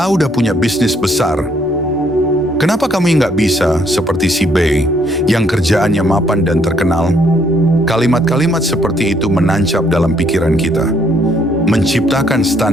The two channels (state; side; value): normal; both; correlation 0.68